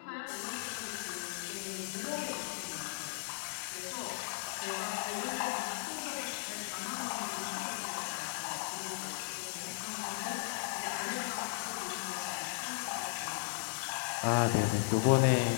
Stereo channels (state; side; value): silent; right; 53 dB below the other